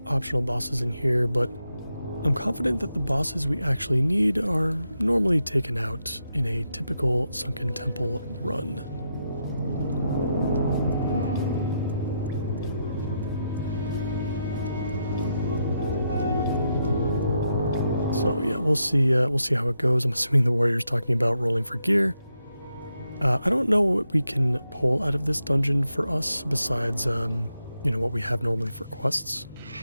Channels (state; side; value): inverted; both; correlation -0.83